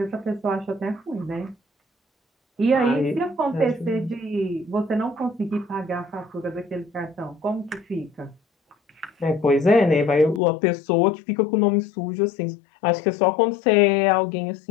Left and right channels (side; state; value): right; drops out; at 10.4 s